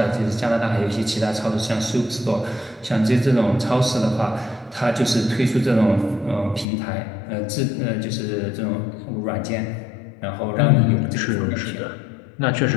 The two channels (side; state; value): right; drops out; at 6.7 s